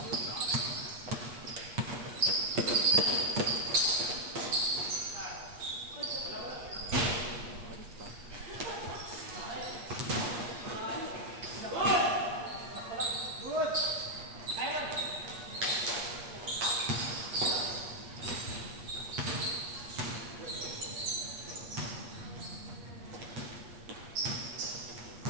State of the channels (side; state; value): left; late; 8.4 ms